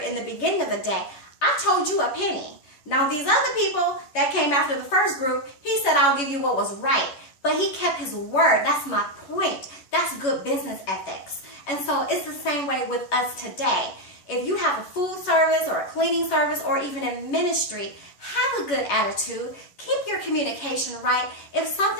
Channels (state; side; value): late; right; 11 ms